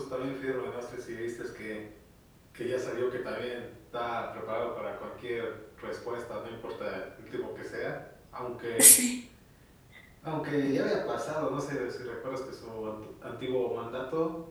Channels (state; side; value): identical; both; correlation 1.00